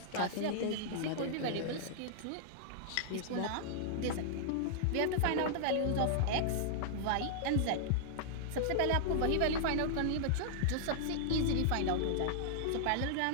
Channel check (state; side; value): different; both; correlation -0.02